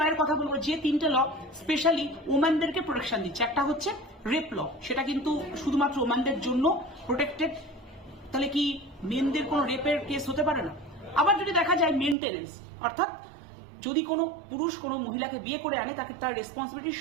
এর কথা বলবো যে তিনটে ল স্পেশালি ওম্যানদেরকে প্রোটেকশন দিচ্ছে। একটা হচ্ছে রেপ ল, সেটা কিন্তু শুধুমাত্র ওম্যানদের জন্য প্রোটেক্টেড। তাহলে কি মেনদের কোনো রেপের কেস হতে পারে না? আবার যদি দেখা যায় মেনটেনেন্স, অর্থাৎ যদি কোনো পুরুষ কোনো মহিলাকে বিয়ে করে আনে তাকে তার রেসপন্সিবিলিটি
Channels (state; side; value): drops out; left; at 12.2 s